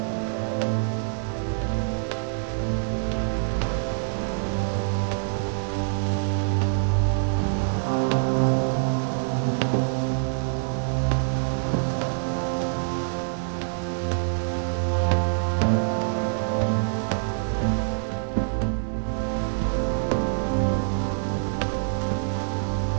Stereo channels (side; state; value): left; silent; digital silence